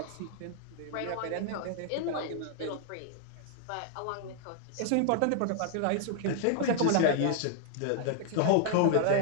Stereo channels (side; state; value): both; different; correlation 0.00